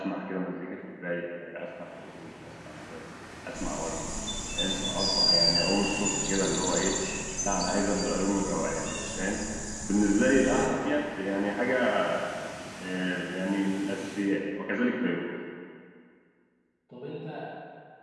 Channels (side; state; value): both; identical; correlation 1.00